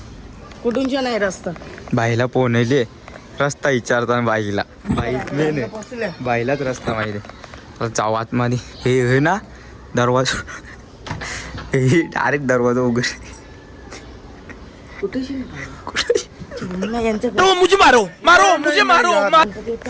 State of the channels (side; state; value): both; identical; correlation 1.00